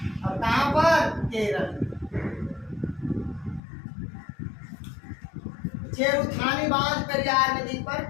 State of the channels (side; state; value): right; drops out; at 3.6 s